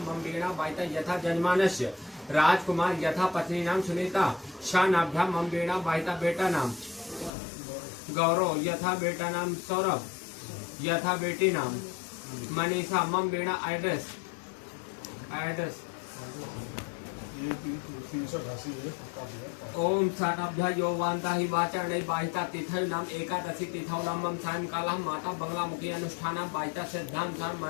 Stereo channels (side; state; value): right; drops out; at 7.3 s